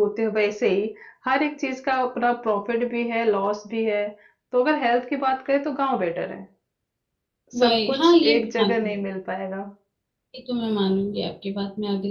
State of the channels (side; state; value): both; identical; correlation 1.00